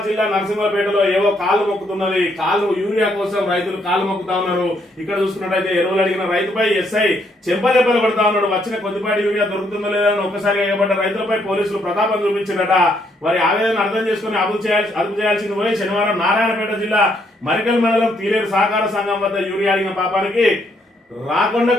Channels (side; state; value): both; normal; correlation 0.72